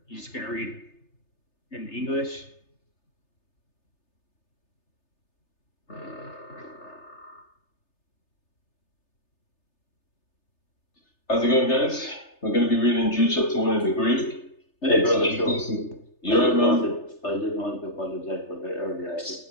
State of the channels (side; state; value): right; late; 3.3 ms